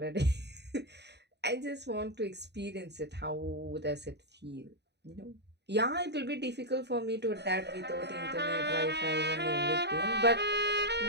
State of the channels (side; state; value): left; late; 0.49 ms